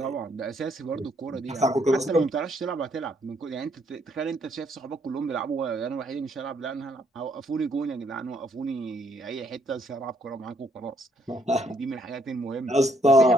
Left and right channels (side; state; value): both; normal; correlation 0.69